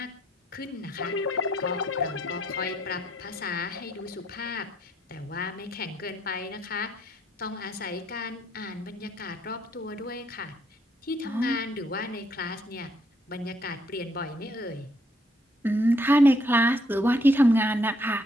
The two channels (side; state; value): both; normal; correlation 0.69